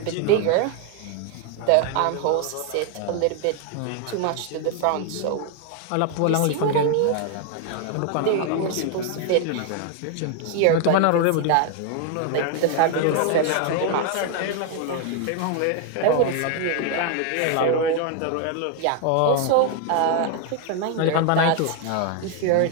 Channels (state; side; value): different; both; correlation 0.01